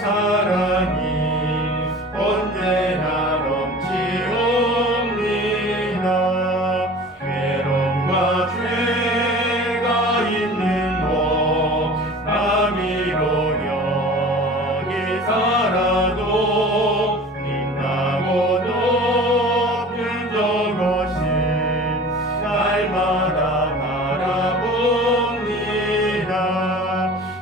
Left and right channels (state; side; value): normal; both; correlation 0.41